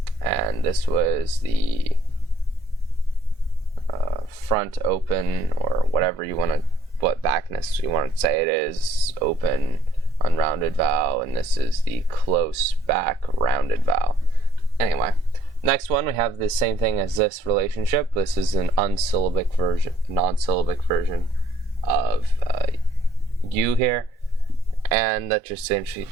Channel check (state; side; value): normal; both; correlation 0.64